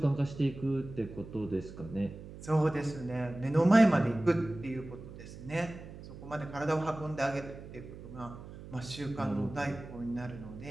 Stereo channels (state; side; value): noise; right; hum, 14 dB below the sound